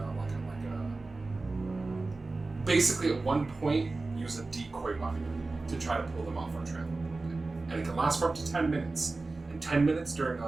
basically at one point, use a decoy weapon to try to pull them off our trail a little bit. And it can last for up to 10 minutes. And 10 minutes during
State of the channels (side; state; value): left; quieter; 3.5 dB